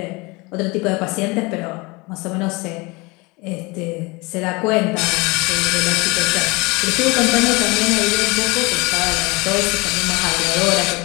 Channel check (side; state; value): right; quieter; 25.5 dB